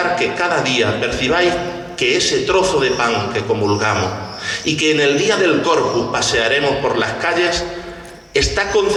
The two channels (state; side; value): identical; both; correlation 1.00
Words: que cada día percibáis que ese trozo de pan que comulgamos y que en el día del Corpus pasearemos por las calles, está